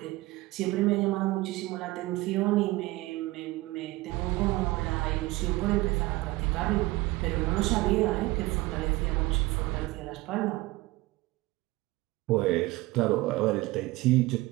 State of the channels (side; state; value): left; quieter; 20.2 dB